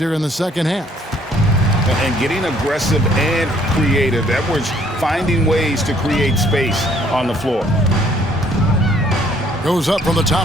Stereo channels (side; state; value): both; normal; correlation 0.63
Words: in the second half. And getting aggressive and creative. Edwards finding ways to create space on the floor. Goes up from the